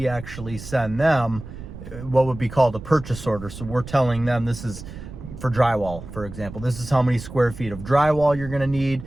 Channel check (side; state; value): right; noise; rumble, 13 dB below the sound